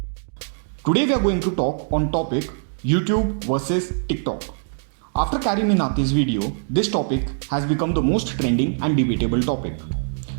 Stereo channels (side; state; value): left; silent; digital silence